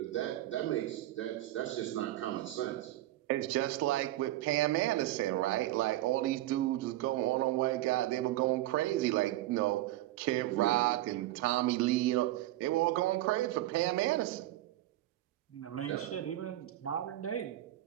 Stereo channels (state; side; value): quieter; left; 15.5 dB